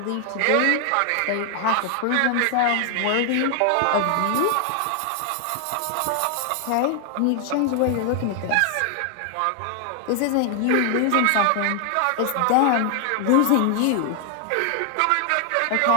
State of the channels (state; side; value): different; both; correlation 0.00